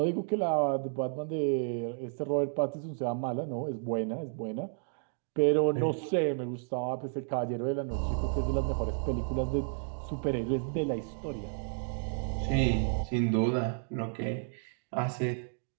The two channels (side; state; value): left; silent; digital silence